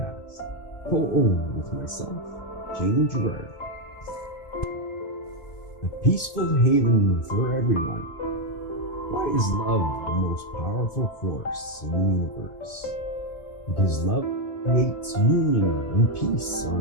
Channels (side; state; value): right; late; 2.5 ms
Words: co-owned with myself, Jamie Gerard. A peaceful haven for everyone. Why is love the most powerful force in the universe? Because love creates union and peace